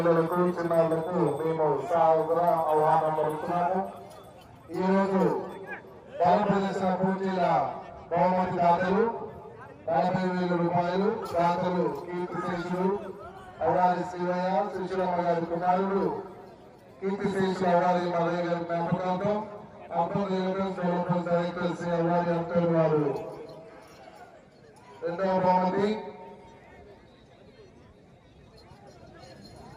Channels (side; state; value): both; identical; correlation 1.00